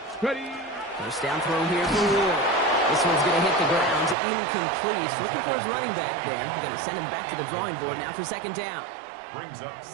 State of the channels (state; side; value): drops out; left; at 4.2 s